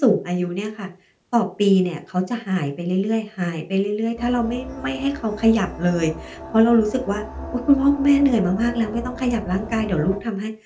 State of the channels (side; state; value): both; identical; correlation 1.00